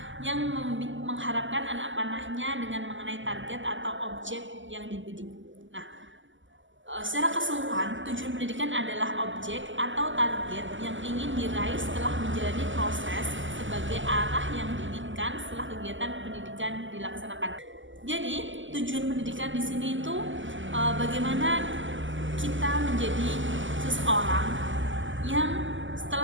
yang mengharapkan anak panahnya dengan mengenai target atau objek yang dibidik. Nah, secara keseluruhan, tujuan pendidikan adalah objek atau target yang ingin diraih setelah menjalani proses sebagai arah yang diinginkan setelah kegiatan pendidikan dilaksanakan. Jadi, tujuan pendidikan di sini itu bagaimana kita menjadi seseorang yang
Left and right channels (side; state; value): left; late; 0.55 ms